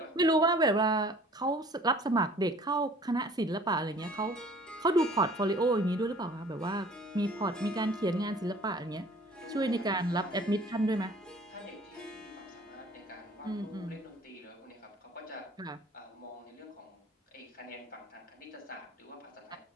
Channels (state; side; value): normal; both; correlation 0.51